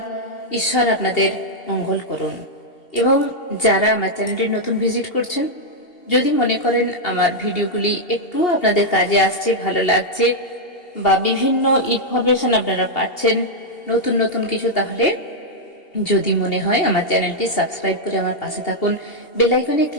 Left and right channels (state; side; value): late; right; 2.8 ms